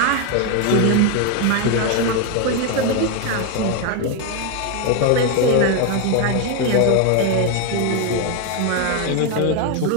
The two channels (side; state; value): both; different; correlation 0.01